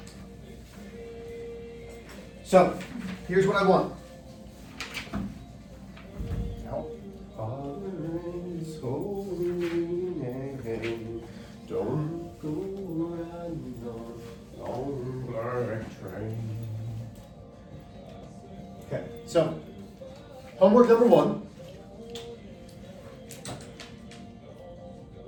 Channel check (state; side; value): identical; both; correlation 1.00